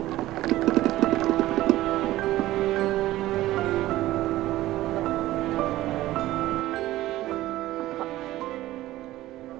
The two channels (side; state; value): left; quieter; 15.9 dB